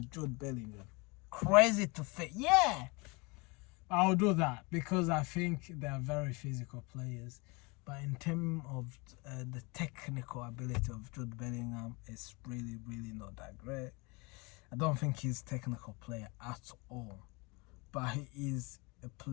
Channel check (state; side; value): quieter; right; 27.7 dB